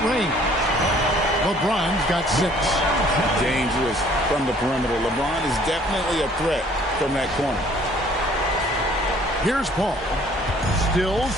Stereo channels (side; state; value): both; normal; correlation 0.57